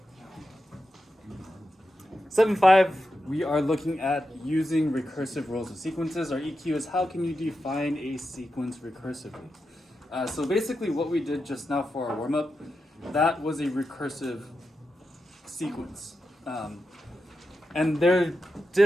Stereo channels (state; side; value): normal; both; correlation 0.89